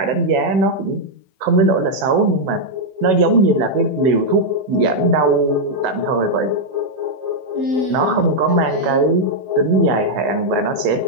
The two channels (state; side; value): late; left; 16 ms